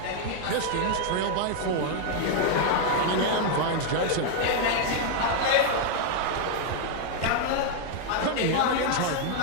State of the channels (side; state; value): both; different; correlation 0.00